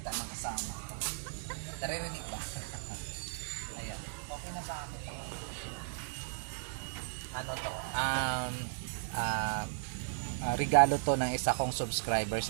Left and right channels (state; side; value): silent; left; digital silence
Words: ng kasama. Naririnig ba? Ayan. Okay na sa akin. Ano to? Regalo to ng isa kong subscriber